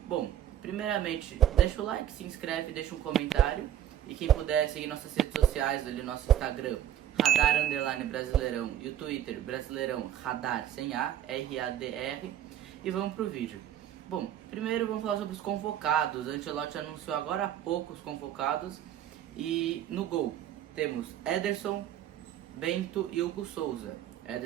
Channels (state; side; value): quieter; left; 11.0 dB